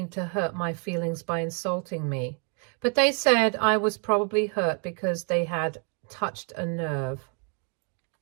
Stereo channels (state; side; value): quieter; left; 38.8 dB